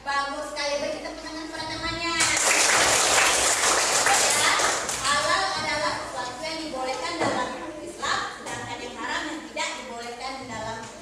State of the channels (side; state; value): both; identical; correlation 1.00